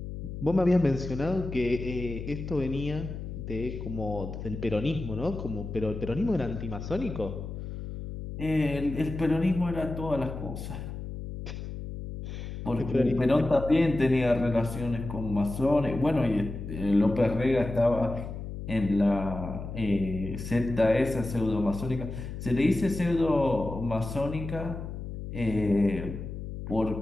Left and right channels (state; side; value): noise; left; hum, 8 dB below the sound